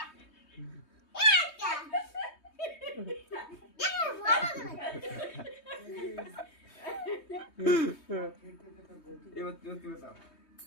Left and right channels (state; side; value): late; right; 3.2 ms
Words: এবার তুই কি বলছ?